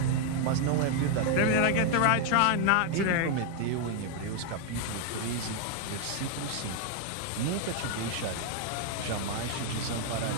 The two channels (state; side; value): different; both; correlation 0.00